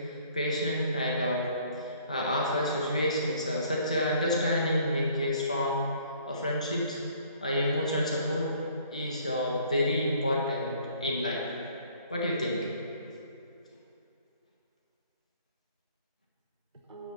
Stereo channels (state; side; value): inverted; both; correlation -0.57